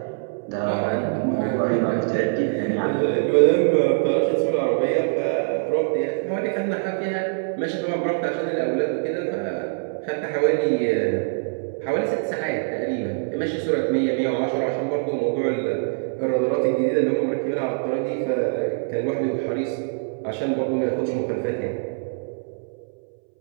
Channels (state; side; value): silent; left; 63 dB below the other